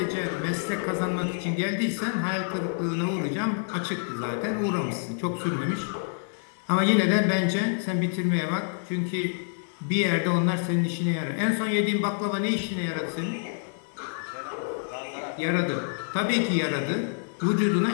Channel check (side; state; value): right; silent; digital silence